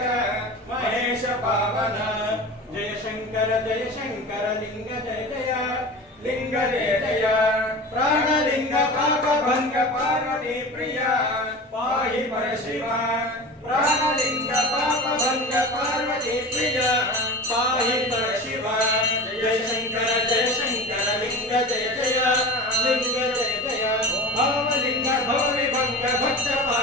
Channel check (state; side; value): normal; both; correlation 0.33